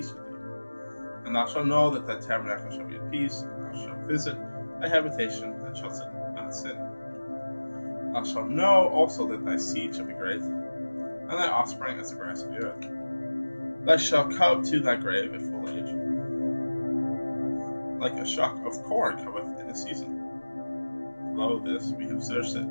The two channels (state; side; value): inverted; both; correlation -1.00